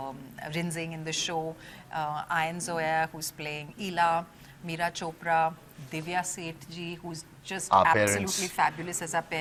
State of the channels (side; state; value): both; identical; correlation 1.00